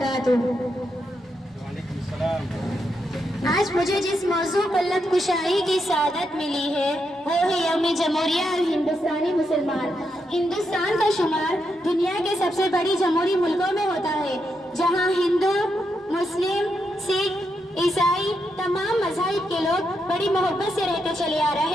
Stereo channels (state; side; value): normal; both; correlation 0.83